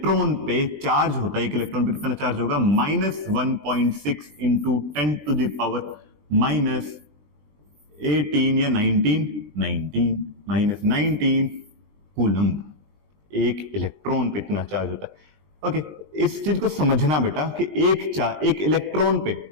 पे चार्ज होता है, एक इलेक्ट्रॉन पे कितना चार्ज होगा? -1.6 इंटू 10 टू द पावर -18 या 19 कूलम। एक इलेक्ट्रॉन पे इतना चार्ज होता है। ओके, इस चीज को समझना बेटा कि एक इलेक्ट्रॉन पे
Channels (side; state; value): left; late; 20 ms